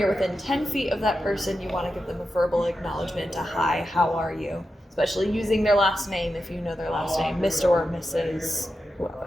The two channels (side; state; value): both; normal; correlation 0.90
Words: within 10 feet of that person, you want to give them a verbal acknowledgement, a hi, how are you? Especially using their last name if you know their last name, Mr. or Mrs. whoever.